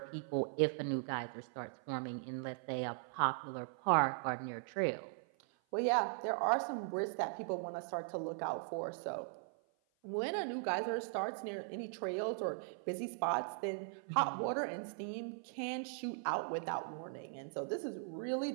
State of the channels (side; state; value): left; silent; 51 dB below the other